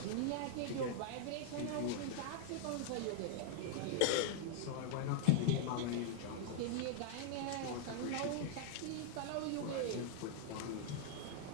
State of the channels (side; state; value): both; different; correlation -0.01